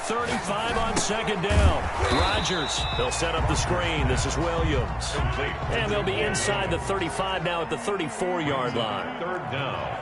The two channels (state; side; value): identical; both; correlation 1.00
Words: on second down, Rodgers. They'll set up the screen. This is Williams. And they'll be inside the 35 now at the 34-yard line. Third